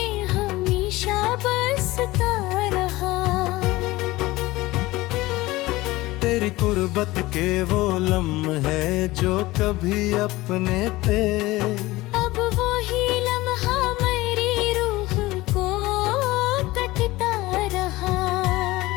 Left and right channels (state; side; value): quieter; right; 19.3 dB